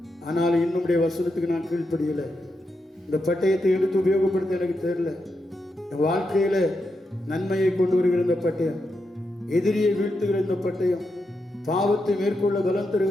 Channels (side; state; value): both; normal; correlation 0.85